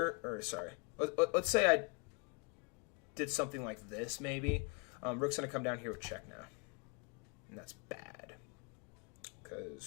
or sorry, let's say I did something like this maybe. Rook's going to come down here with check now. And that's bad.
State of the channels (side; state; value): right; quieter; 32.6 dB